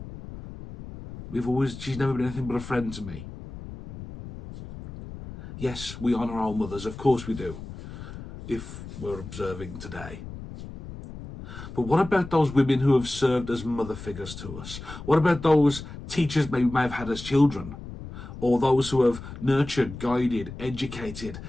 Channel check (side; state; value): left; noise; rumble, 12 dB below the sound